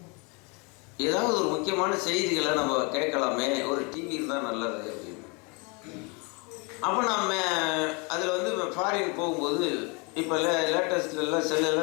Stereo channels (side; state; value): right; quieter; 31.0 dB